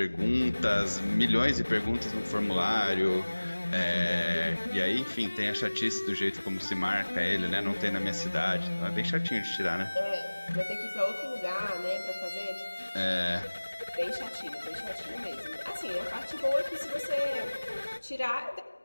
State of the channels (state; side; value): inverted; both; correlation -1.00